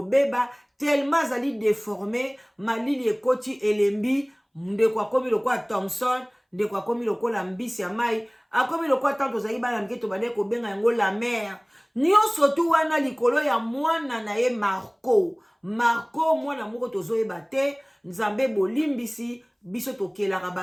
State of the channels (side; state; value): both; identical; correlation 1.00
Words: tellement azali déformé, malili ekoti elembi, ndeko akomi lokola Thompson, ndeko akomi lokola mbisi ya mai, akomi lokola tanto zali bana mketo bande kobenga yango la mère. Nyonso tu wana likolo ya mwana na ye Marco mwana moko tozoyeba te. Nzambe bolimbisi biso tokelaka